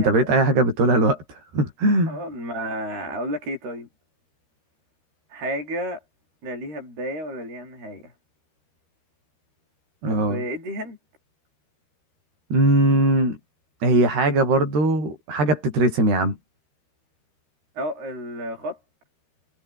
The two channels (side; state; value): left; late; 13 ms